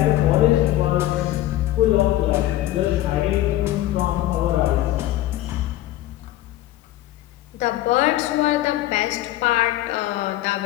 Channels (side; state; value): right; quieter; 14.9 dB